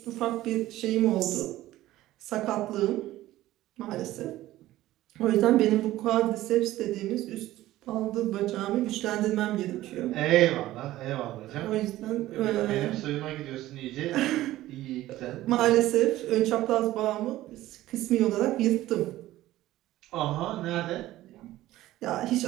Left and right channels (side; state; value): left; quieter; 15.5 dB